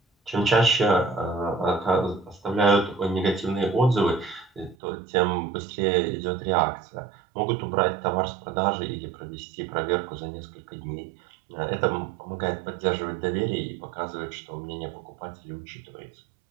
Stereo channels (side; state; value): left; drops out; at 4.8 s